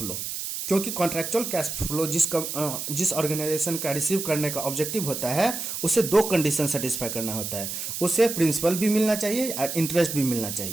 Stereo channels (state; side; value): noise; right; hiss, 5 dB below the sound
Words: क्योंकि कॉन्ट्रैक्चुअल कैश फ्लो जिस ऑर्गेनाइजेशन का रिसीव करने का ऑब्जेक्टिव होता है, उसे 2 कंडीशन सेटिस्फाई करना होता है, उसे प्रिंसिपल भी मिलना चाहिए और इंटरेस्ट भी मिलना